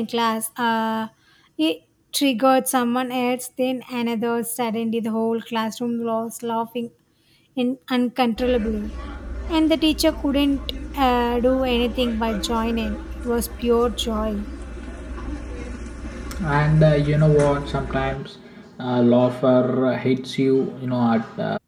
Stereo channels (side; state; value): both; identical; correlation 1.00